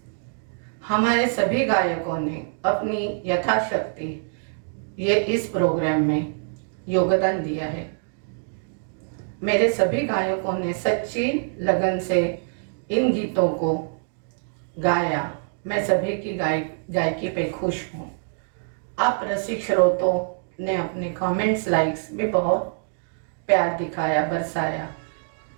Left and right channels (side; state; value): left; silent; digital silence